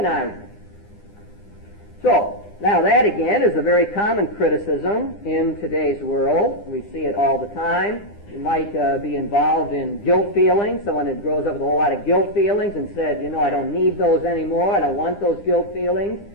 So, now that again is a very common criticism in today's world. We see it all the time. You might be involved in guilt feelings. Someone that grows up with a whole lot of guilt feelings and said, I don't need those anymore. I don't want those guilt feelings.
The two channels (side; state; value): right; late; 9.9 ms